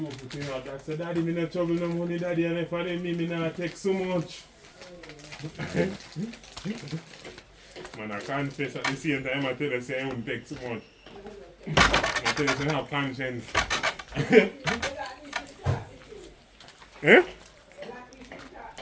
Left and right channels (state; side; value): identical; both; correlation 1.00